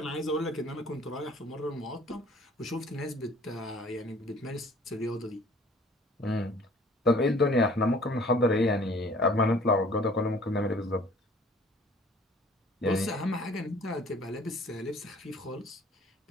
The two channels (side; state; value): both; normal; correlation 0.53